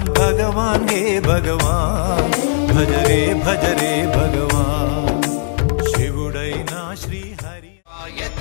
భగవాన్ హే భగవాన్ భజరే భజరే భగవాన్ శివుడైనా శ్రీహరి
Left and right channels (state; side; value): silent; right; digital silence